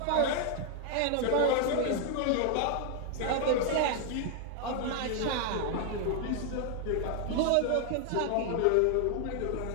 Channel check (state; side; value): different; both; correlation 0.00